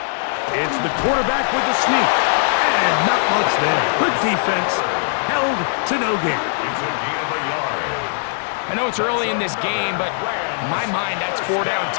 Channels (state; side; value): silent; right; digital silence